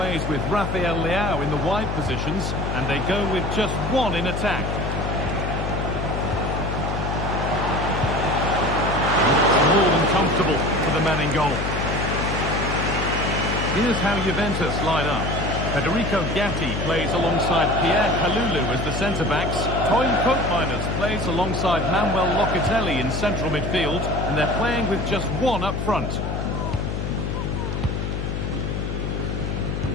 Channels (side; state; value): left; noise; hum, 2 dB below the sound